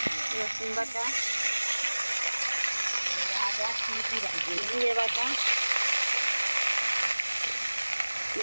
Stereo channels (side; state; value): both; inverted; correlation -1.00